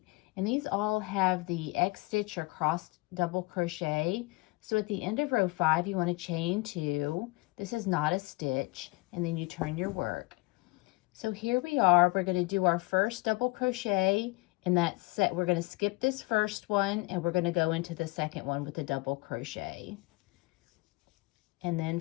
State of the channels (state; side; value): quieter; right; 24.5 dB